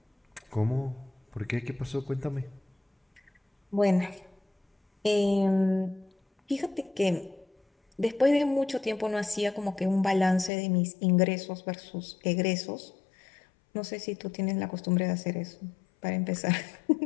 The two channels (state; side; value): drops out; right; at 10.5 s